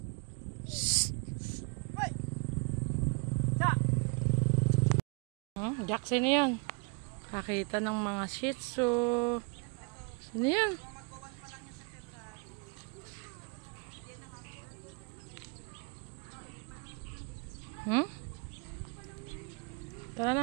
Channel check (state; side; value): quieter; left; 35.3 dB